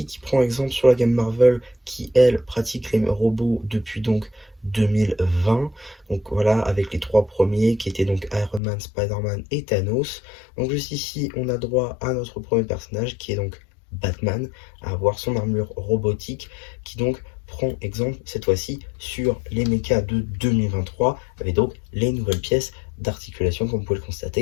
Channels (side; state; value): right; drops out; at 8.6 s